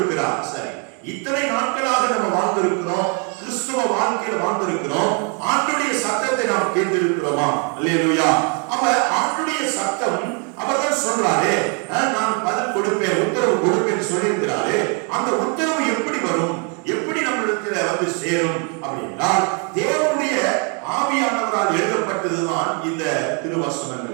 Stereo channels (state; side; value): quieter; left; 37.7 dB